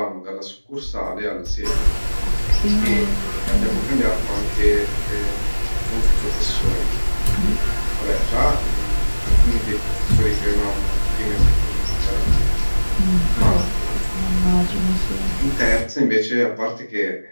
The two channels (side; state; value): both; inverted; correlation -1.00